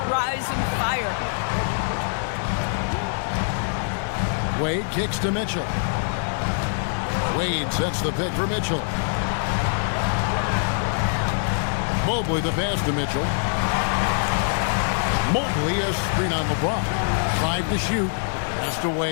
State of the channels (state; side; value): silent; right; digital silence